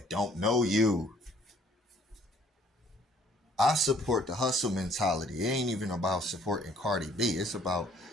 don't know you. I support the hustle mentality. It ain't even about supporting Cardi B. It's about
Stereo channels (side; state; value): both; normal; correlation 0.60